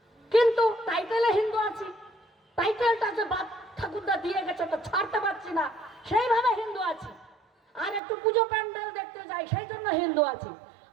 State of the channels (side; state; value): left; drops out; at 8.0 s